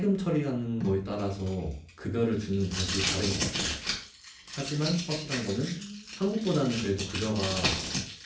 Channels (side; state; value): both; identical; correlation 1.00